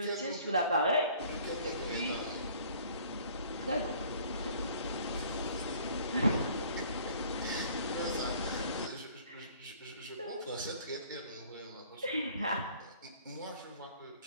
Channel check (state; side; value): inverted; both; correlation -0.54